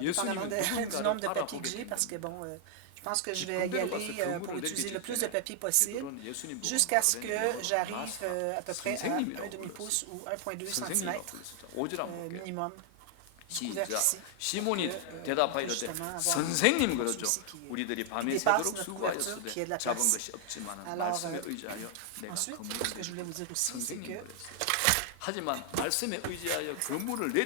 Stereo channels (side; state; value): both; different; correlation 0.00